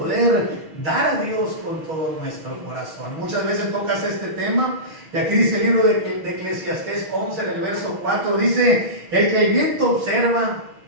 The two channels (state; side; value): late; left; 6.3 ms